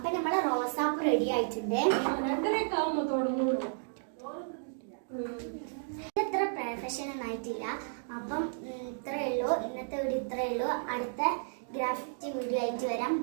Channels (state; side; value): silent; left; digital silence